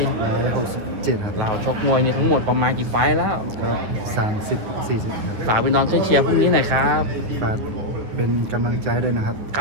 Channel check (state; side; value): late; left; 9.9 ms